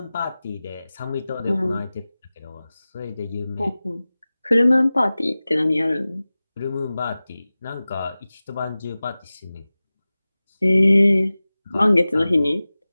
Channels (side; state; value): both; inverted; correlation -0.97